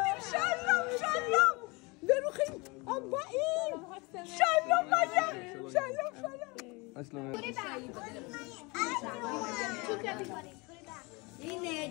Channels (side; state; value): right; quieter; 26.8 dB